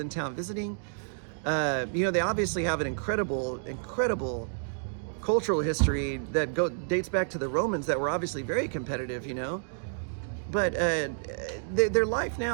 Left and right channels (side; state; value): left; silent; digital silence